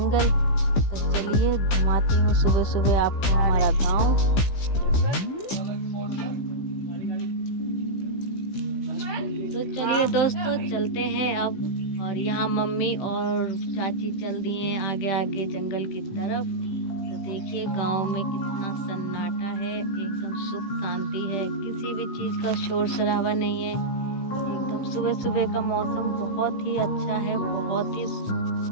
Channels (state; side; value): late; right; 15 ms